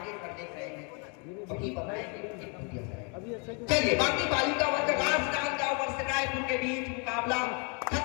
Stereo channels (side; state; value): right; quieter; 35.4 dB